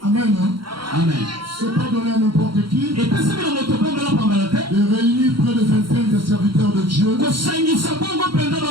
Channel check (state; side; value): late; left; 0.73 ms